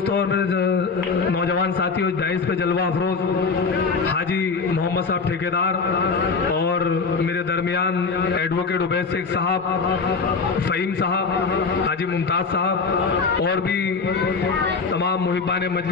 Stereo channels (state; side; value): quieter; right; 4.8 dB